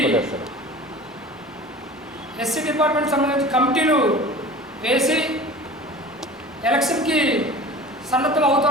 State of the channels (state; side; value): normal; both; correlation 0.39